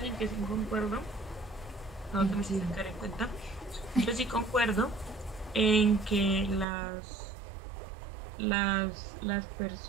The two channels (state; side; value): drops out; left; at 6.7 s